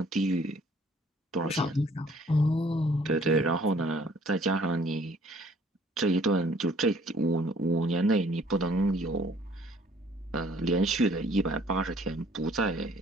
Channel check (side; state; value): both; normal; correlation 0.58